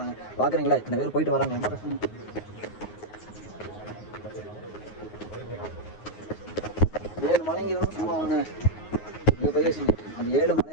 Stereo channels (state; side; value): late; right; 9.5 ms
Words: தாங்க. பார்க்குறீங்களா இத்தனை பேர் போயிட்டு வராங்க. ரொம்ப கஷ்டம். 7 மலைங்க இருந்தாலும் சும்மா வாங்க. இங்கே போய் அந்த 7